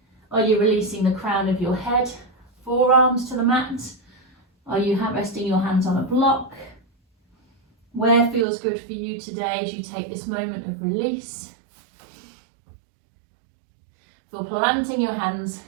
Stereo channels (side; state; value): left; drops out; at 8.5 s